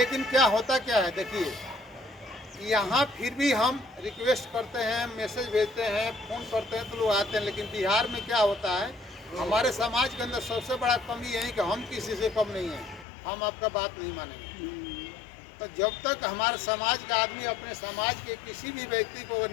क्या होता क्या है, देखिए यहाँ फिर भी हम रिक्वेस्ट करते हैं, मैसेज भेजते हैं, फ़ोन करते हैं तो लोग आते हैं। लेकिन बिहार में क्या होता है, हमारे समाज के अंदर सबसे बड़ा कमी यही कि हम किसी से कम नहीं हैं, हम आपका बात नहीं मानेंगे। तो जब तक हमारे समाज का आदमी अपने समाज के किसी भी व्यक्ति को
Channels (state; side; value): drops out; right; at 13.1 s